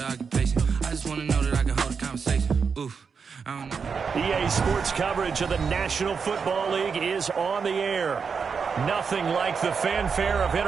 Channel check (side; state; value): left; quieter; 5.8 dB